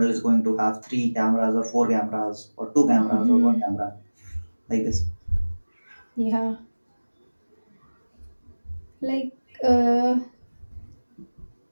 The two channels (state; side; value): inverted; both; correlation -1.00